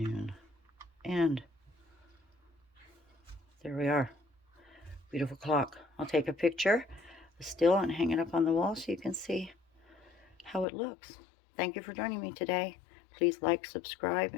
And there we are. Beautiful clock. I'll take a picture still and hang it up on the wall so you can see how it looks. Thank you for joining me today. Please like, subscribe,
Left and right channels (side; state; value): right; drops out; at 10.7 s